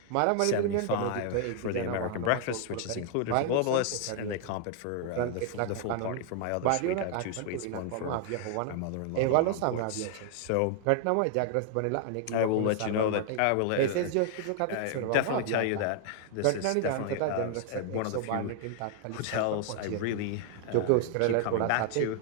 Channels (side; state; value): both; different; correlation 0.00